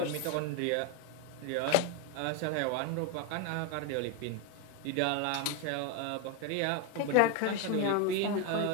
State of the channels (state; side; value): different; both; correlation 0.02